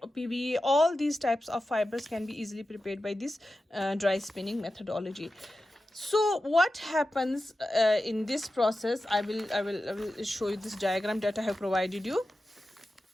all these types of fibers can be easily prepared by this dry spinning methodology. So what happens in this process? I will show you this diagram that I have provided you.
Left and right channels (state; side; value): normal; both; correlation 0.93